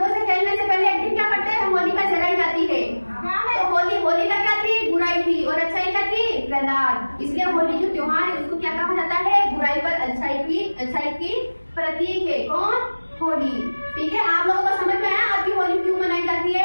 से खेलने से पहले एक दिन क्या करते हैं? होलिका जलाई जाती है। तो होलिका क्या थी? बुराई थी और अच्छाई क्या थी? प्रहलाद। इसलिए होली जो त्योहार है उसको क्या कहा जाता है? बुराई पर अच्छाई की प्रतीक है। कौन? होली। ठीक है, आप लोगों को समझ में आया आपकी होली क्यों मनाई जाती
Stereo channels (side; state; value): both; inverted; correlation -1.00